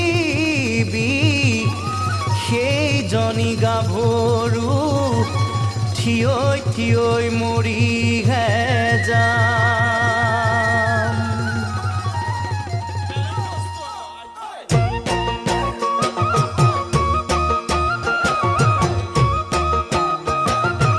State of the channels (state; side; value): identical; both; correlation 1.00